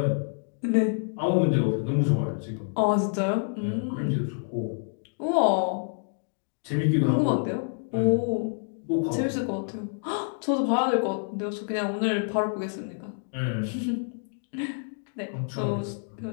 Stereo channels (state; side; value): silent; right; digital silence